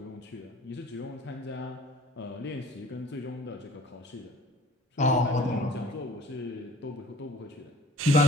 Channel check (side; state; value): both; normal; correlation 0.52